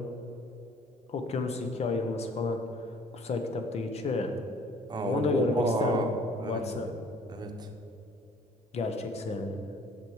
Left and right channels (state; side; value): normal; both; correlation 0.55